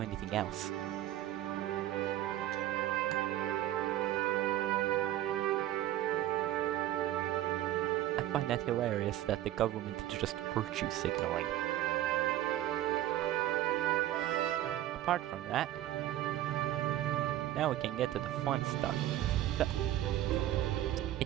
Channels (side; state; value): left; quieter; 13.6 dB